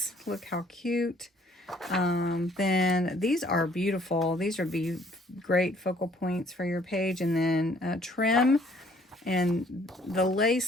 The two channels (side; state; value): both; normal; correlation 0.61